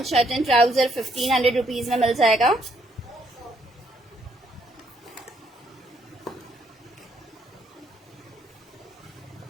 shirt and trouser 1500 rupees में मिल जाएगा।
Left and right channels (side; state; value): both; normal; correlation 0.71